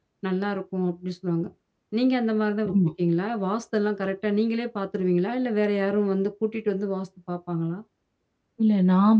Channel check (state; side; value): identical; both; correlation 1.00